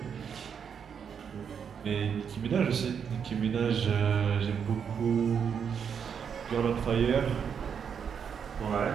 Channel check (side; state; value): left; quieter; 7.2 dB